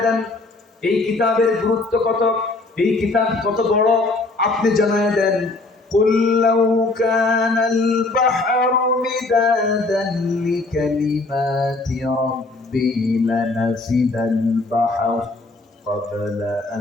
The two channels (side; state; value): right; quieter; 3.3 dB